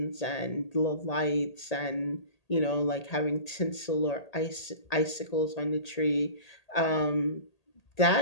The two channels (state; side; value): late; right; 1.8 ms